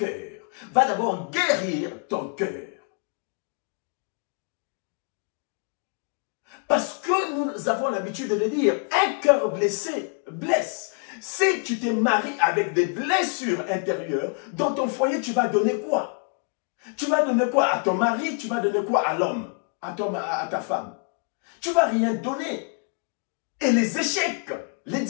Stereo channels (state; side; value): quieter; right; 36.1 dB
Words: Va d'abord guérir ton cœur. Parce que nous avons l'habitude de le dire, un cœur blessé blesse. Si tu te maries avec des blessures intérieures, dans ton foyer, tu vas donner quoi? Tu vas donner quoi à ton mari? Tu vas donner quoi à l'homme? À ta femme? Tu ne vas rien donner. Et les échecs, les